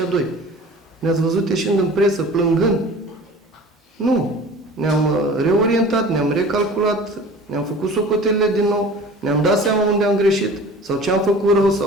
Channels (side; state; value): both; normal; correlation 0.42